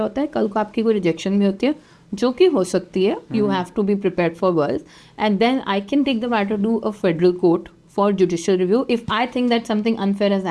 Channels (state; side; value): identical; both; correlation 1.00